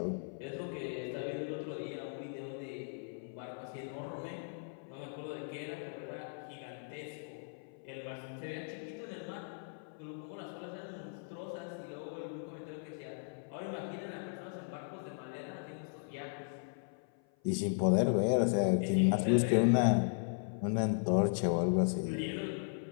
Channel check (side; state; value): right; silent; 53 dB below the other